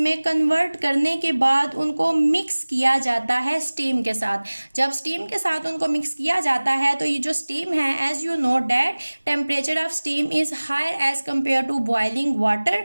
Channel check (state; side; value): inverted; both; correlation -1.00